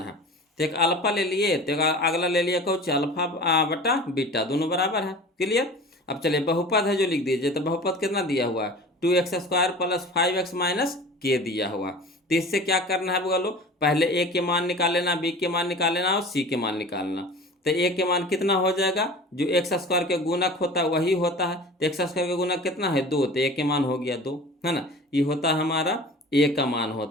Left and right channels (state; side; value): normal; both; correlation 0.39